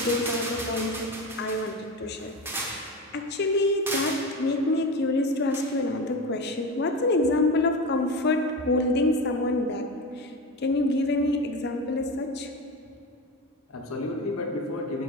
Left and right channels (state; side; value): normal; both; correlation 0.24